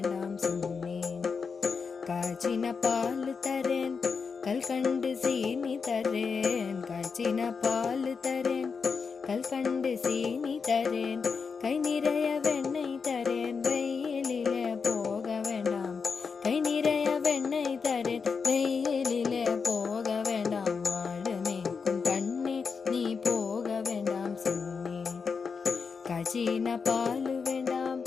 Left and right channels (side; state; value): right; quieter; 5.4 dB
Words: சொன்னேன். காய்ச்சின பால் தரேன் கல்கண்டு சீனி தரேன், காய்ச்சின பால் தரேன் கல்கண்டு சீனி தரேன், கை நிறைய வெண்ணெய் தரேன் வெயிலிலே போக வேண்டாம், கை நிறைய வெண்ணெய் தரேன் வெயிலிலே போக வேண்டாம். மாடு மேய்க்கும் கண்ணே நீ போக வேண்டாம் சொன்னேன். காய்ச்சின பால் வேண்டாம்